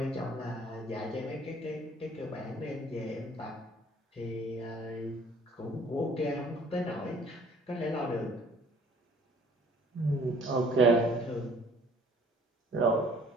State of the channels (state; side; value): normal; both; correlation 0.56